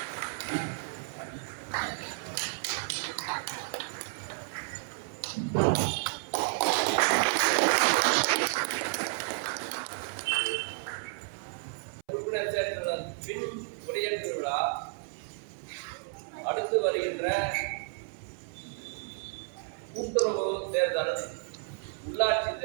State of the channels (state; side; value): silent; left; 57 dB below the other